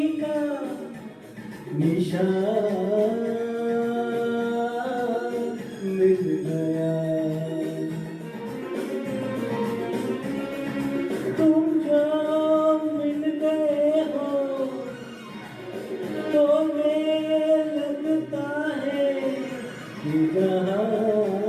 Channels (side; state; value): both; identical; correlation 1.00